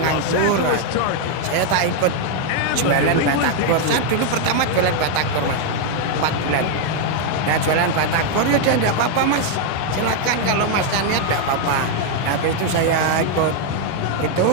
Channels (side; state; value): both; different; correlation 0.00